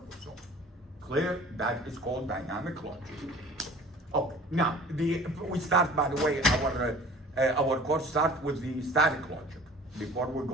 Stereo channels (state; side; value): normal; both; correlation 0.46